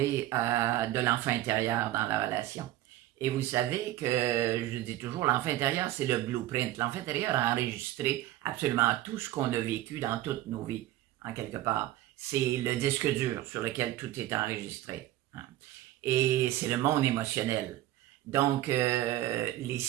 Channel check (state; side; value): quieter; left; 14.7 dB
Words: de l'enfant intérieur dans la relation. Et vous savez que je dis toujours, l'enfant intérieur, c'est le blueprint. L'enfant intérieur a enregistré absolument tout ce qu'on a vécu dans toutes nos vies, en quelque part. C'est le disque dur sur lequel tout est enregistré, hein. Et c'est le monde émotionnel. Donc, les